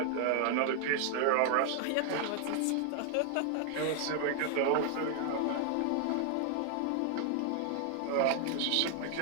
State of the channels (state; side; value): different; both; correlation 0.00